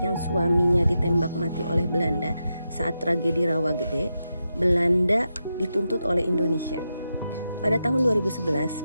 suaminya ditembak mati oleh Belanda saat tragedi Rawagede, Belanda dituntut oleh Indonesia. Pada tahun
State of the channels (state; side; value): inverted; both; correlation -0.88